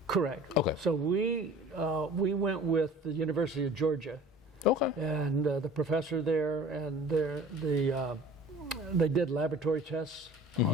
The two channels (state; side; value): normal; both; correlation 0.44